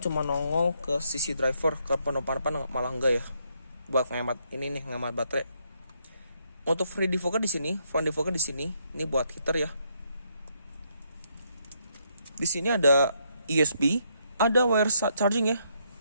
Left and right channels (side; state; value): both; inverted; correlation -0.74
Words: nongol ke sisi driver, ke penumpang depan malah enggak ya. Buat ngehemat ini nih, ngehemat baterai. Untuk free defogger di sini, front defogger di sini, ini buat heater ya. Di sini ada USB, ada wire charging ya.